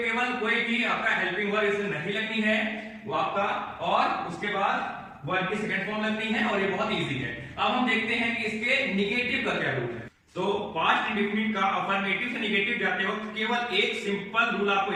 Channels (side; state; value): both; identical; correlation 1.00